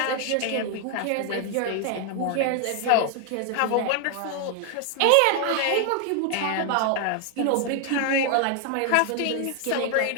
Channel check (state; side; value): different; both; correlation 0.00